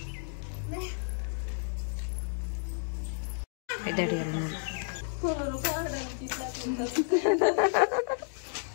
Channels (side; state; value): right; silent; digital silence